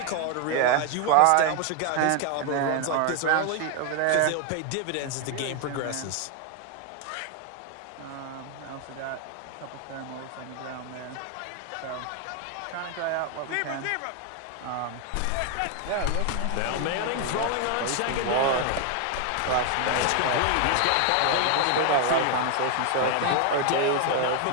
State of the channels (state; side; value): different; both; correlation 0.01